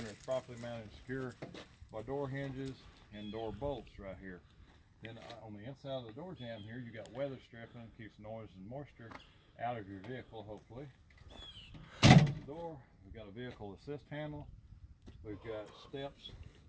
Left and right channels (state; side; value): identical; both; correlation 1.00